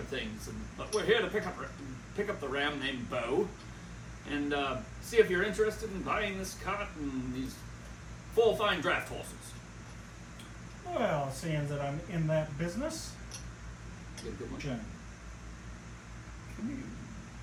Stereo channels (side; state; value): both; identical; correlation 1.00